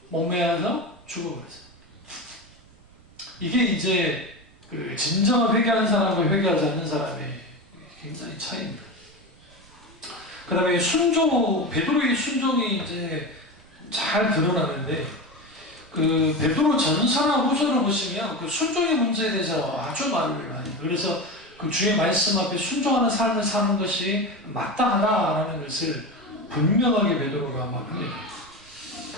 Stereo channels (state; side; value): noise; right; rumble, 27 dB below the sound